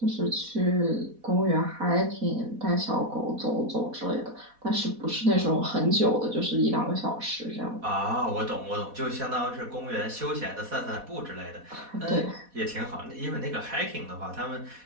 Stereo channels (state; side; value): late; left; 4.1 ms